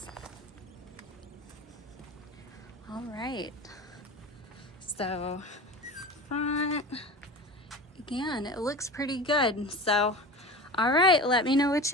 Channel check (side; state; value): both; normal; correlation 0.33